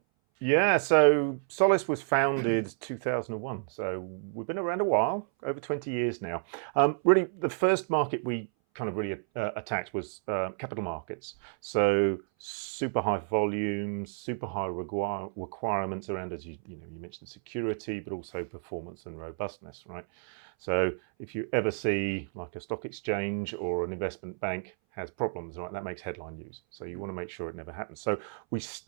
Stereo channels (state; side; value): silent; left; 57 dB below the other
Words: Yeah, so Solace was founded 2001. So we've been around a while, over 20 years now. Really, the first market we kind of really attacked was capital markets. So super high volumes, super high requirements around, as you mentioned, security, but also performance and robustness, right? So if you ever see like a stock exchange or an investment bank has problems, right, that makes headline news. So you want to make sure it never happens. So we